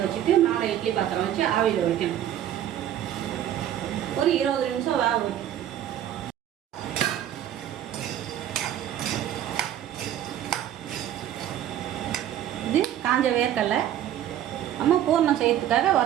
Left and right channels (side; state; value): left; quieter; 11.3 dB